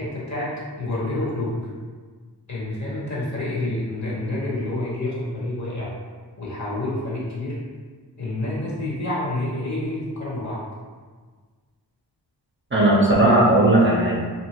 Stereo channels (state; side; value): normal; both; correlation 0.35